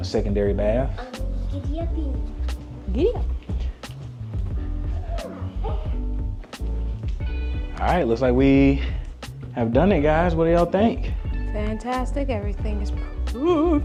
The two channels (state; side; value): identical; both; correlation 1.00